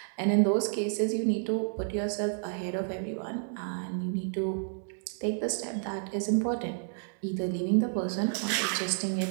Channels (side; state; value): left; silent; digital silence